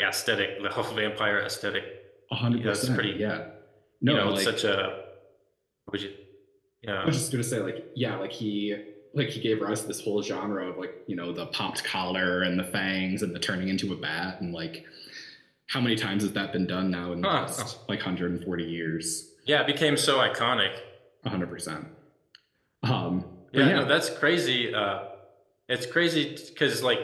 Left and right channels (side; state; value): both; identical; correlation 1.00